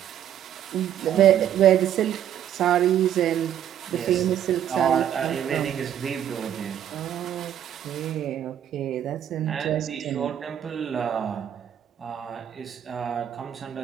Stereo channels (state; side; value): quieter; left; 10.3 dB